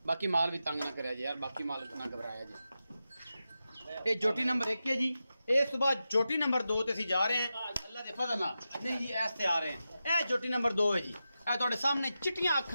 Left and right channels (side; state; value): both; inverted; correlation -0.91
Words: बाकी माल भी तंग ना करे जी यार, बाकी माल ना घबराया जी। ये झोटी नंबर 1 है जी। इस सुबह झोटी नंबर 2 ते असीं जा रहे हैं अल्लाह के फजल नाल। नहीं जी ऐसे आ रहे हैं। यह झोटी नंबर 2 है जी। यह तुहाडे सामने चिट्टियां